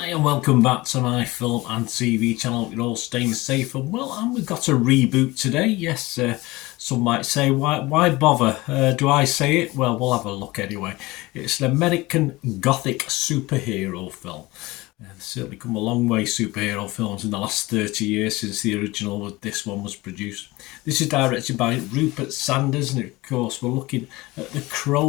and welcome back to my film and TV channel. You're all staying safe and well, and we've got a reboot today. Yes, some might say, why bother? Do I say it? Well, we'll have a look anyway. It's an American Gothic superhero film. There's certainly come a long way, superhero films, in the last 30 years since the original this one was produced. This is directed by Rupert Sanders, and of course we're looking at The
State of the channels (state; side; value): quieter; right; 20.8 dB